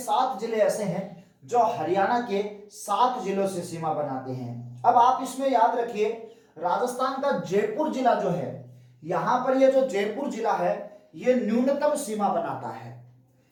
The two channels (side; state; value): both; identical; correlation 1.00